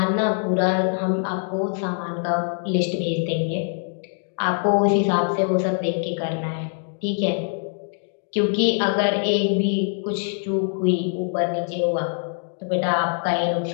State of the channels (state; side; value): silent; right; 57 dB below the other